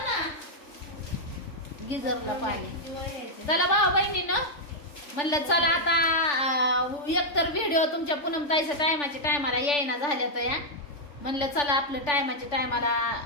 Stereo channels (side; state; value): right; late; 3.4 ms